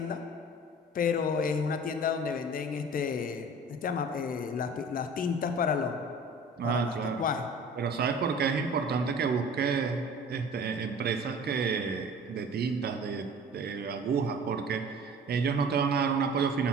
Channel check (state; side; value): normal; both; correlation 0.44